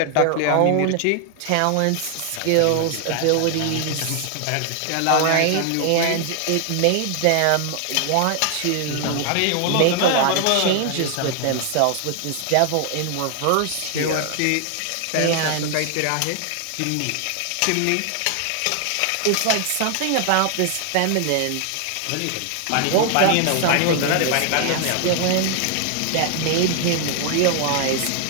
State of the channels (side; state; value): both; different; correlation 0.00